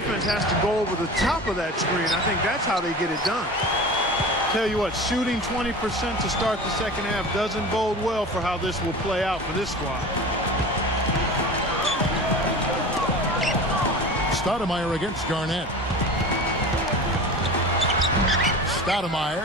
has to go over the top of that screen. I think that's how they get it done. Tell you what, shooting 20% to start the second half doesn't bode well for how this will play out for this squad. Stoudemire against Garnett. Stoudemire,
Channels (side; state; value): both; normal; correlation 0.35